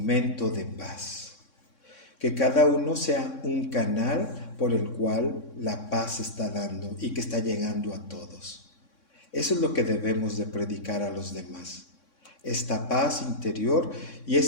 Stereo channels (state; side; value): late; right; 3.6 ms